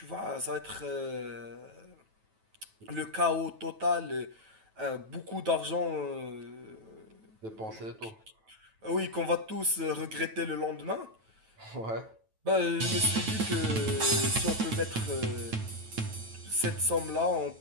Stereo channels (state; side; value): late; left; 9.1 ms